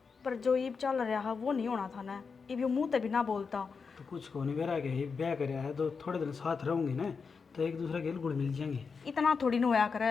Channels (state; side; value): quieter; right; 5.3 dB